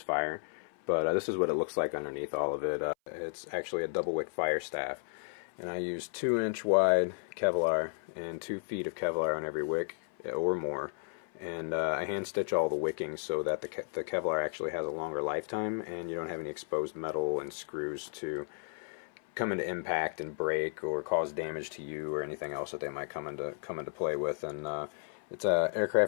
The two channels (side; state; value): right; silent; 55 dB below the other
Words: fire. But this is what it looks like underneath all of it. It's actually a double wick fire staff, and I use 2-inch wide Kevlar and 2 feet of Kevlar on every wick or more. And I hand stitch all the wicking so that the Kevlar actually has a longer lifetime, and you don't have any exposed metal and screws to come into impact and break or cause damage to you or anything else that they might come into play with. And it's